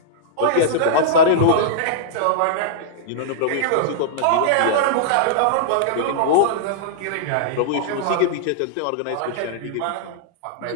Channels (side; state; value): both; different; correlation -0.02